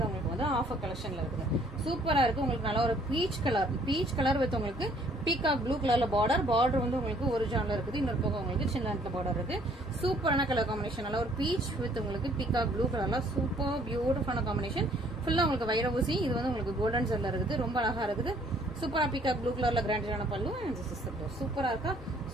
உங்களுக்கு வந்து ஆஃபர் கலெக்ஷன்ல இருக்குது. சூப்பரா இருக்கு. உங்களுக்கு நல்ல ஒரு பீச் கலர் வித் உங்களுக்கு பீகாக் ப்ளூ கலர்ல பார்டர் வந்து உங்களுக்கு ஒரிஜினல் இருக்குது. இன்னொரு பக்கம் உங்களுக்கு சின்ன லென்த்ல பார்டர் இருக்கு. சூப்பரான கலர் காம்பினேஷன், நல்ல ஒரு பீச் வித் உங்களுக்கு பீகாக் ப்ளூ கலர்ல சூப்பர் பியூட்டிஃபுல்லான காம்பினேஷன். ஃபுல்லா உங்களுக்கு வைரூசி. இது வந்து உங்களுக்கு கோல்டன் ஜெல்ல இருக்குது. ரொம்ப அழகா இருக்குது. சூப்பரா பீகாக் ப்ளூ கலர்ல கிராண்டான பல்லு அண்ட் சூப்பரா இருக்கா.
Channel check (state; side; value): normal; both; correlation 0.61